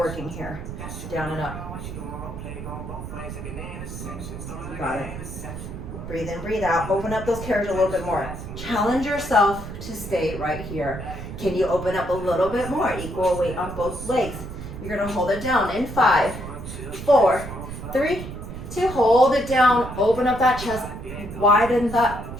here. Down and up. Got it. Breathe in, breathe out. Open up those carriages a little bit more. Challenge yourself to stay right here. Can you open up a little bit more? Equal weight on both legs. You're gonna hold it down in 5, 4, 3, 2. Hold it down. Open up that chest. Widen that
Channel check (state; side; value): noise; right; rumble, 9 dB below the sound